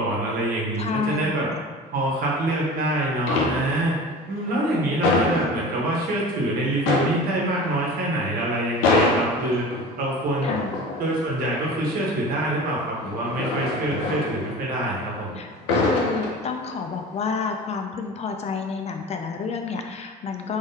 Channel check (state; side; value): normal; both; correlation 0.37